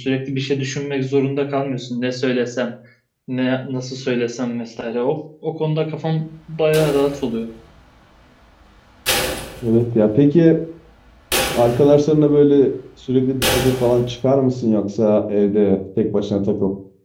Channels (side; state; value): both; identical; correlation 1.00